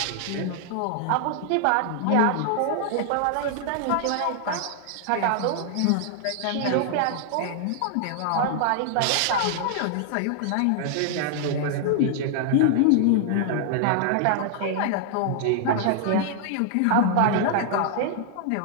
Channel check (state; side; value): different; both; correlation 0.00